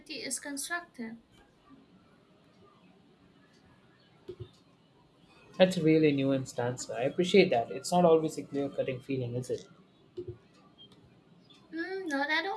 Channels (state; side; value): identical; both; correlation 1.00